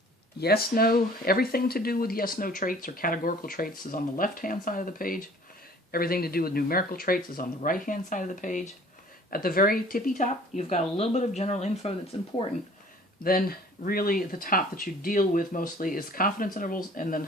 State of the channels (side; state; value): both; normal; correlation 0.51